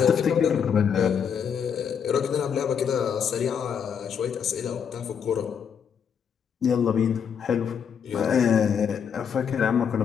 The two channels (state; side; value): quieter; right; 7.4 dB